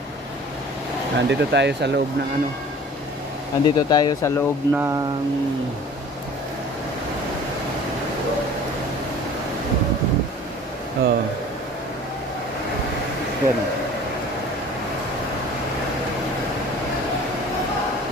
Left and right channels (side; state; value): both; normal; correlation 0.45